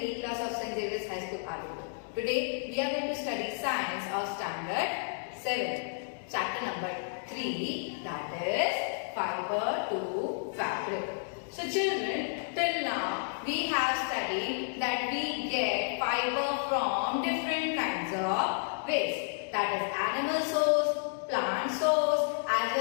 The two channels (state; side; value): silent; right; digital silence